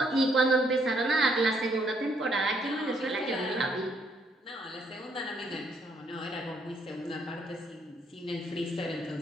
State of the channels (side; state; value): both; normal; correlation 0.71